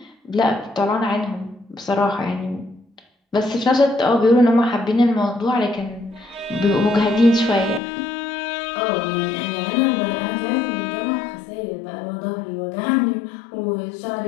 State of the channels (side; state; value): right; drops out; at 7.8 s